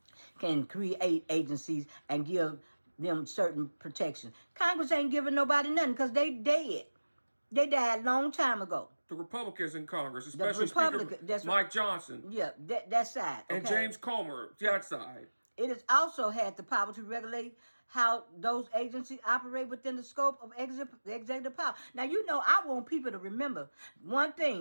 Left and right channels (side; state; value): both; inverted; correlation -1.00